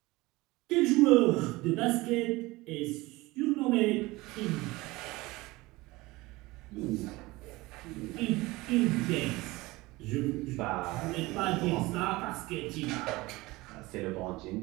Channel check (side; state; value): left; quieter; 21.0 dB